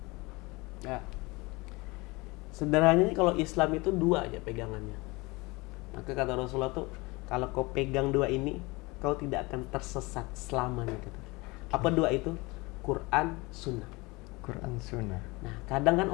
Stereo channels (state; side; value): quieter; right; 24.4 dB